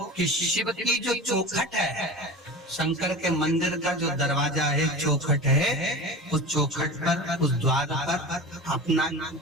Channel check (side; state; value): both; normal; correlation 0.32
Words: कि शिव की जो चौखट है, शंकर के मंदिर का जो दरवाजा है, चौखट है, उस चौखट पर, उस द्वार पर अपना